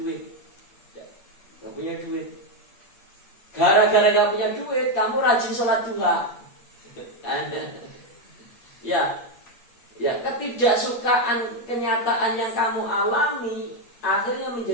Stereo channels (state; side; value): late; right; 8.5 ms